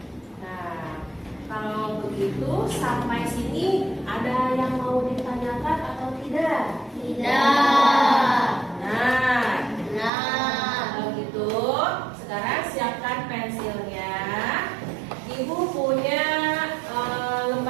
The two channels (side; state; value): left; drops out; at 10.1 s